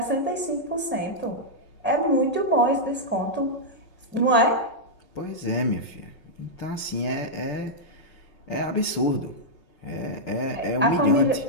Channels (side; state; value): right; late; 5.4 ms